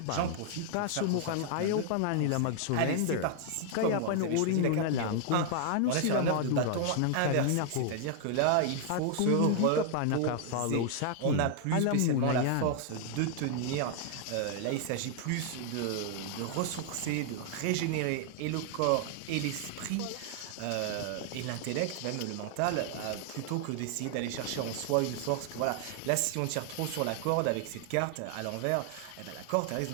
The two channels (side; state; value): both; different; correlation 0.00